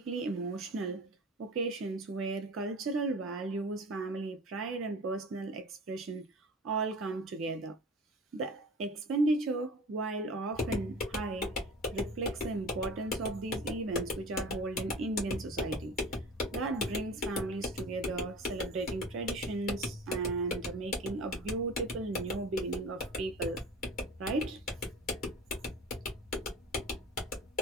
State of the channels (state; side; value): normal; both; correlation 0.38